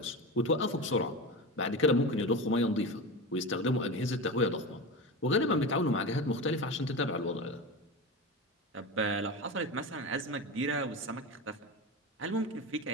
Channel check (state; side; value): normal; both; correlation 0.24